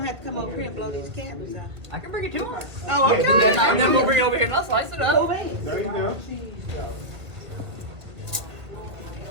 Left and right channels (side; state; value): left; late; 2.0 ms